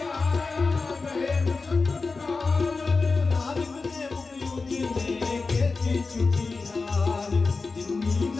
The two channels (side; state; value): right; quieter; 4.1 dB